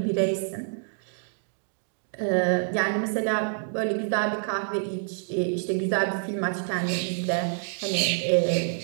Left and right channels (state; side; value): silent; left; digital silence